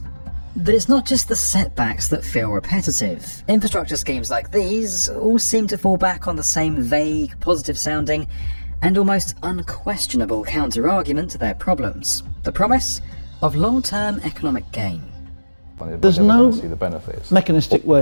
But it's not just the setbacks that feel repetitive. Infrastructure schemes like these all seem to fall back on the same vague, positive-sounding and almost unquestionable counter-argument to their problems. The promise of long-term economic gain. There's no mechanistic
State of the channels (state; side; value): inverted; both; correlation -1.00